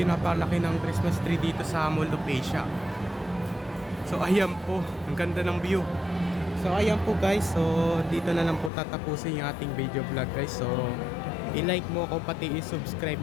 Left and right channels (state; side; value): drops out; right; at 8.7 s